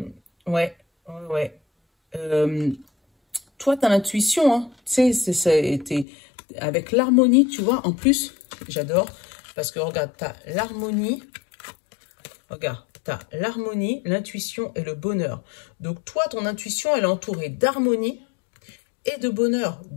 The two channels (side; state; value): right; drops out; at 6.1 s